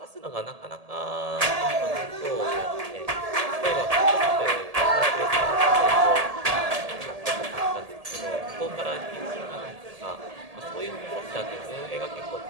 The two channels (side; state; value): left; late; 1.7 ms